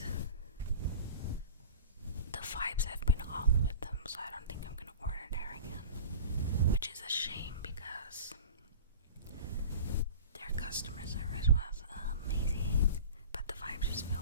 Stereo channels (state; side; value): inverted; both; correlation -0.36